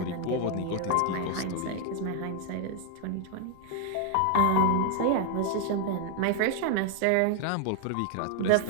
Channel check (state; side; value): different; both; correlation 0.00